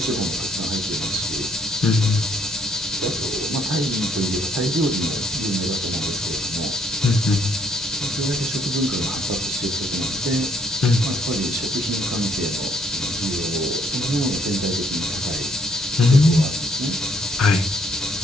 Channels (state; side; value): normal; both; correlation 0.68